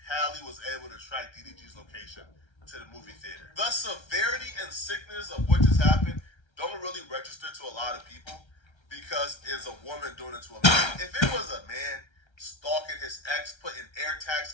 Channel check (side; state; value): right; late; 1.3 ms